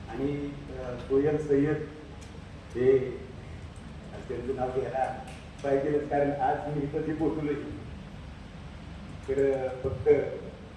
आणि सोयल सय्यद हे त्यांचं नाव घ्यायला पाहिजेलच, कारण आज मी इथं जे पोचलोय तर फक्त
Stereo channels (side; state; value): both; identical; correlation 1.00